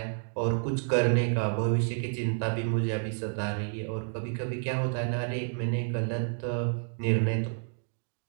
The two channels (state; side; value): silent; left; 58 dB below the other